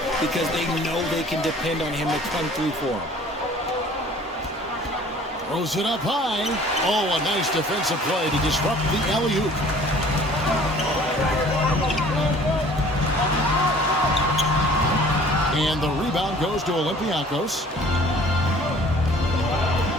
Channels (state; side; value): normal; both; correlation 0.51